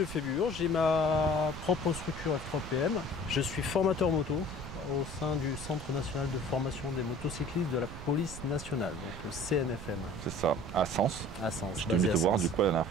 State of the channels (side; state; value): right; noise; rumble, 11 dB below the sound